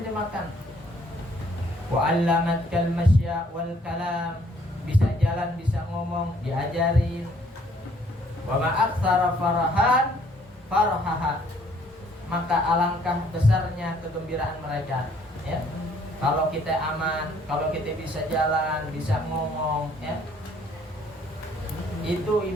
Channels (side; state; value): both; normal; correlation 0.62